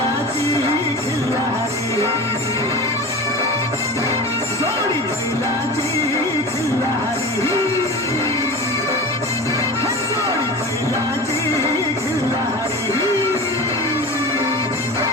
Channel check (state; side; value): normal; both; correlation 0.32